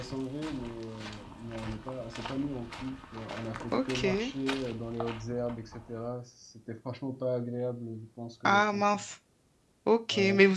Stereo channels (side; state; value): both; identical; correlation 1.00